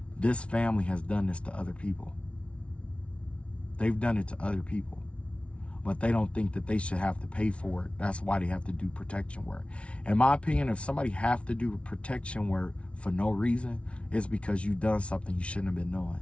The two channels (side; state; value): right; late; 0.061 ms